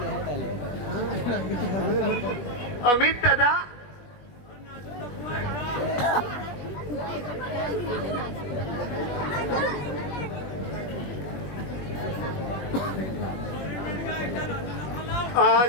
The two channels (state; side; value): late; right; 21 ms